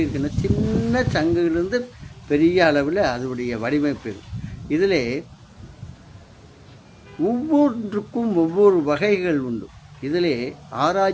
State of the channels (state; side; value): identical; both; correlation 1.00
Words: இருக்குன்னா, சின்ன சங்குகளிலிருந்து பெரிய அளவில் அதனுடைய வடிவமைப்பு. இதில் ஒவ்வொன்றுக்கும் ஒவ்வொரு வகைகள் உண்டு. இதிலே